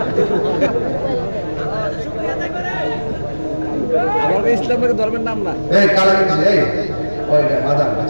ইসলামের ধর্মের নাম না এই কালা এই ওইটা মাদাম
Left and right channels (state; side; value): inverted; both; correlation -1.00